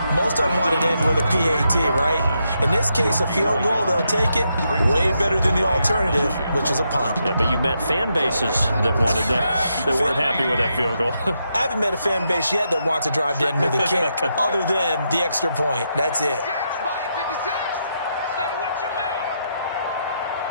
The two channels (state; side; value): inverted; both; correlation -0.81